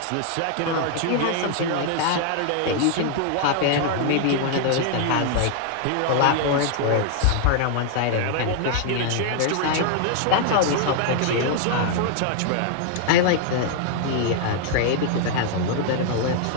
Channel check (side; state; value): both; different; correlation 0.00